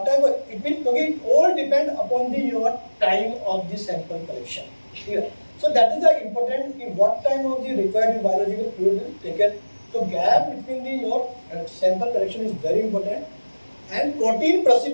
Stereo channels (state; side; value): inverted; both; correlation -1.00